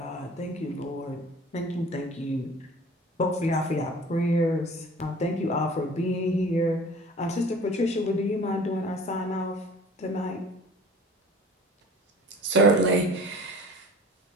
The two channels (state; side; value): normal; both; correlation 0.45